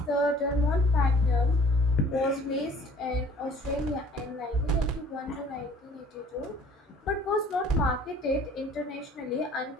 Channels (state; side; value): normal; both; correlation 0.53